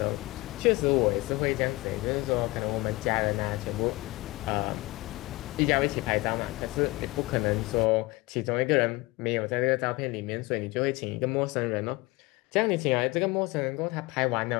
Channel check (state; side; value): quieter; right; 21.9 dB